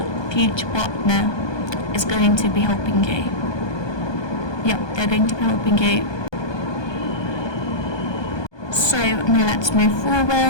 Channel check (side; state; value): right; late; 1.2 ms